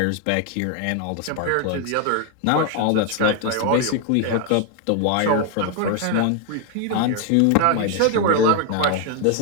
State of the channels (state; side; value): different; both; correlation 0.00